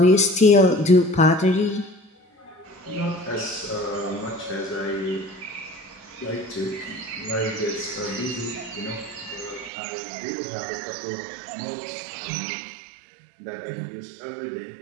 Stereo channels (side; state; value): left; drops out; at 9.7 s